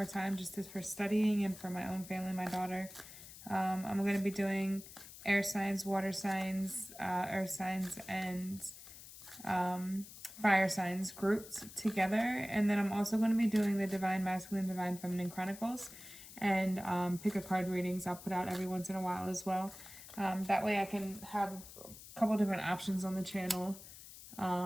time for studying and for my own family, my daughter. I'm going to be doing air signs, water signs, earth signs, and fire signs grouped together. And then I'm also going to be doing the Divine Masculine, Divine Feminine Chronicles and pick a card readings I'll put out every once in a while as well. That way I can have a couple different options on the channel.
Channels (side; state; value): left; noise; hiss, 16 dB below the sound